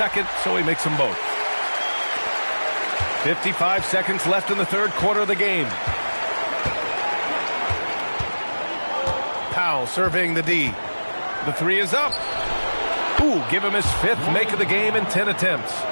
so he makes them both. 55 seconds left in the third quarter of the game. Powell surveying the D. The three is up. Ooh, give him his fifth make of the game in 10 attempts.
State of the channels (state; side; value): inverted; both; correlation -1.00